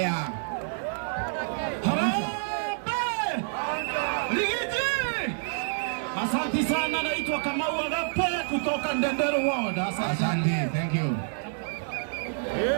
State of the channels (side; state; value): left; silent; digital silence